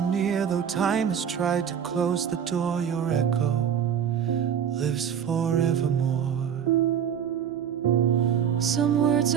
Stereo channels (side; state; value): left; quieter; 8.4 dB